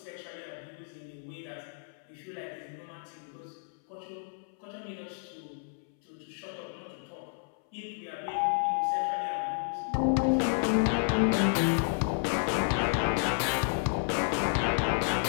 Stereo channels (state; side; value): silent; right; 57 dB below the other